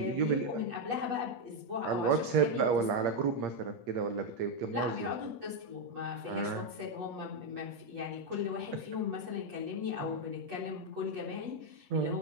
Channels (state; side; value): late; left; 8.2 ms